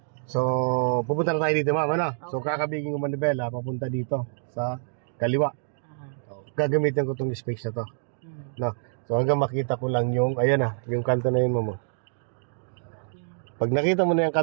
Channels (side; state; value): left; silent; digital silence